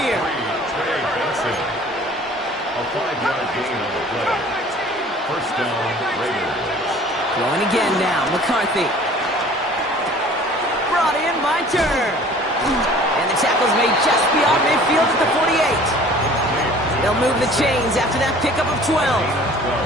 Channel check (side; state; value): both; normal; correlation 0.49